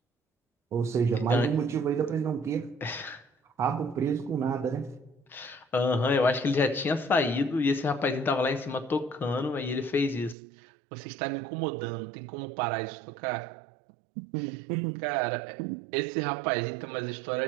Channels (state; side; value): drops out; left; at 10.4 s